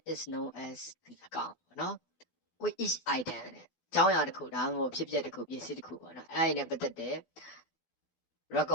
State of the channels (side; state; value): right; late; 12 ms